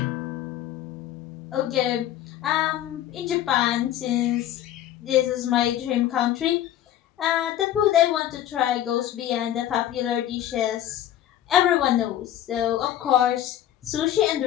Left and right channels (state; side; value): quieter; right; 12.0 dB